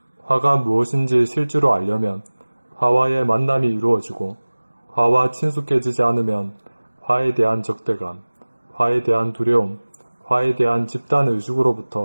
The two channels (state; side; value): inverted; both; correlation -1.00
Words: 화가 무엇인지 실제로 알려면 화와의 만남이 이루어지고 화와 친숙해지지 않으면 화에 대한 적대감, 화에 대한 두려움, 화에 대한